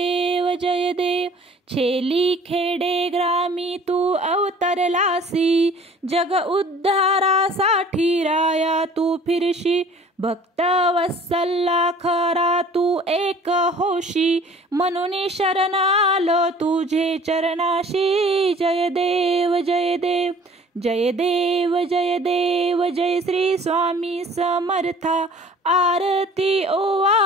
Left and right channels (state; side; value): normal; both; correlation 0.50